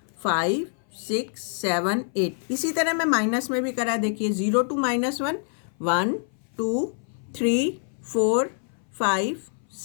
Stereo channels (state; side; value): silent; right; 58 dB below the other